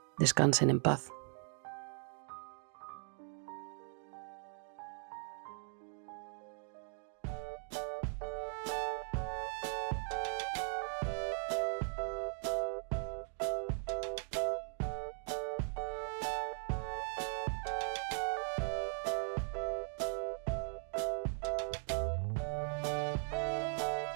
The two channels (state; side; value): silent; left; 52 dB below the other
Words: Descansen en paz.